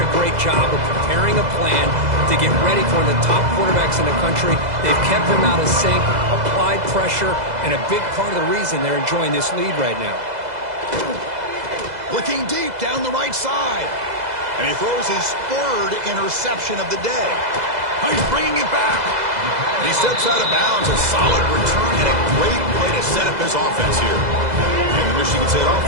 a great job of preparing a plan to get ready for one of the top quarterbacks in the country. They've kept him out of sync, applied pressure, and a big part of the reason they're enjoying this lead right now. Looking deep down the right side. And he throws his third interception of the day. Oh, he's bringing it back. And he steps out of bounds. A solid return and a great play to set up his offense here. And the Michigan State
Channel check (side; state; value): left; late; 2.0 ms